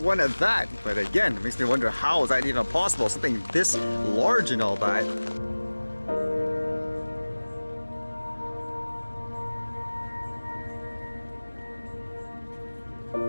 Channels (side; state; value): both; inverted; correlation -1.00